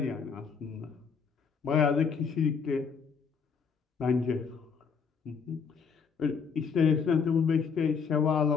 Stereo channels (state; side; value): quieter; right; 6.0 dB